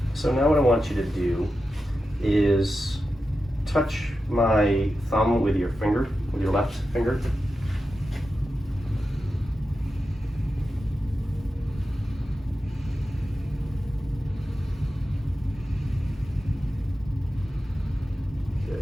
now what I want you to do is touch my thumb with your finger, with your left finger.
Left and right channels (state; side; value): normal; both; correlation 0.91